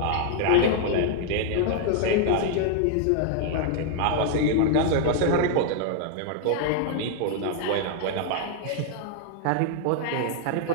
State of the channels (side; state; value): both; different; correlation 0.00